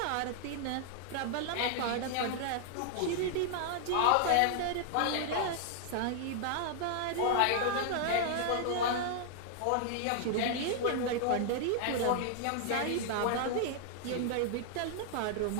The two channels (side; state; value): both; different; correlation -0.01